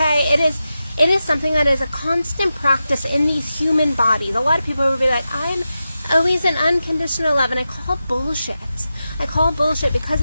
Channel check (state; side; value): inverted; both; correlation -0.91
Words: It is something that is a constant practice in these human bodies. A lot of people will be like, I'm always in unconditional love, and I call bullshit. Because